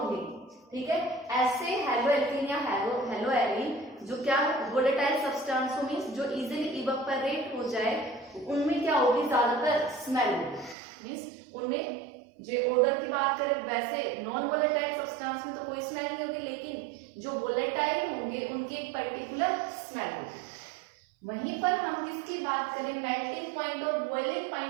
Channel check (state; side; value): drops out; left; at 10.8 s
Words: ठीक है, ऐसे हलोएल्केन या हलोएरिन जो क्या वोलेटाइल सब्सटेंस मींस जो इजीली इवेपोरेट हो जाए, उनमें क्या होगी, ज्यादातर स्मेल होगी. मींस उनमें जो ऑर्डर की बात करें वैसे नॉन वोलेटाइल सब्सटेंस में तो कोई स्मेल नहीं होगी, लेकिन जो वोलेटाइल होंगे उनकी एक पर्टिकुलर स्मेल होगी. वहीं पर हम किसकी बात करें, मेल्टिंग पॉइंट और बॉइलिंग